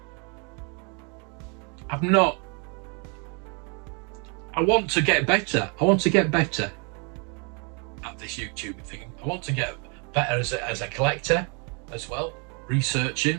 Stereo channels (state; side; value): quieter; left; 34.9 dB